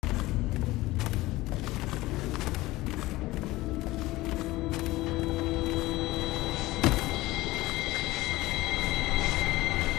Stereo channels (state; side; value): quieter; right; 18.7 dB